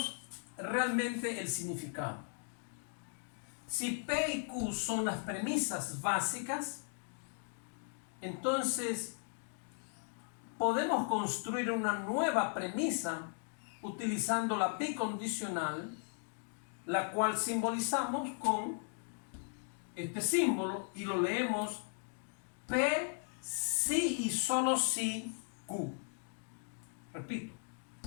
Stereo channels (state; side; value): silent; right; 53 dB below the other